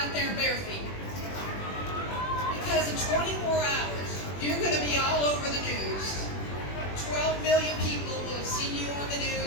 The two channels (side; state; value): right; late; 21 ms